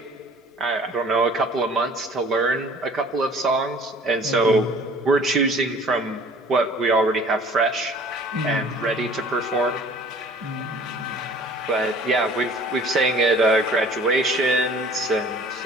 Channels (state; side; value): normal; both; correlation 0.50